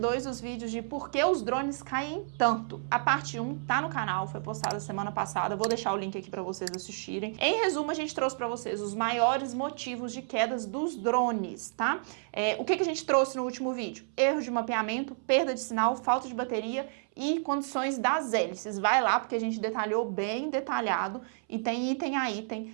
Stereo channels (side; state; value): left; silent; 57 dB below the other